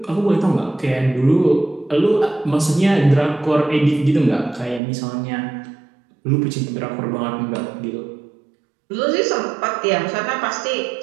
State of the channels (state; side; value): drops out; left; at 4.8 s